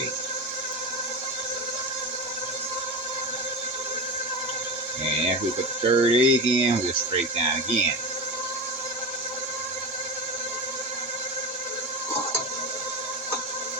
And after we put the 3rd egg in, we'll scrape down again.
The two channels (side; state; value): both; normal; correlation 0.23